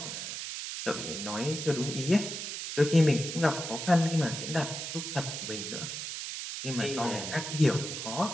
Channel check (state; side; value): noise; right; hiss, 6 dB below the sound